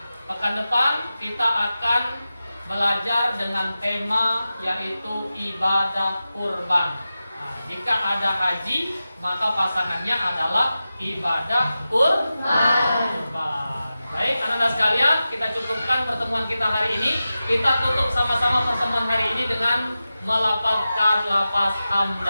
pekan depan kita akan belajar dengan tema yaitu ibadah kurban. Nah, jika ada haji, maka pasangannya adalah ibadah kurban. Baik, anak-anak sekalian, kita cukupkan pertemuan kita hari ini. Kita tutup sama-sama pertemuan hari ini dengan melafazkan lafaz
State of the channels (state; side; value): inverted; both; correlation -0.93